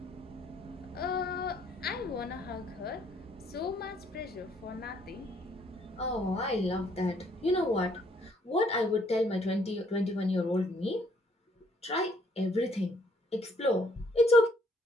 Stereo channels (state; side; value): normal; both; correlation 0.66